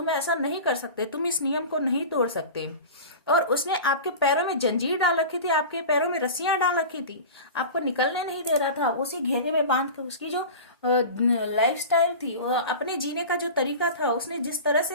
ऐसा नहीं कर सकते, तुम इस नियम को नहीं तोड़ सकते। और उसने आपके पैरों में जंजीर डाल रखी थी, आपके पैरों में रस्सियां डाल रखी थी, आपको निकलने नहीं दे रहा था, उसी घेरे में बांध के उसकी जो लाइफस्टाइल थी, अपने जीने का जो तरीका था, उसने जिस तरह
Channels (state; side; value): inverted; both; correlation -0.33